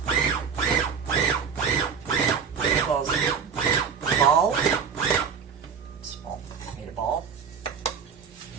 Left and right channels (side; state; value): left; quieter; 6.6 dB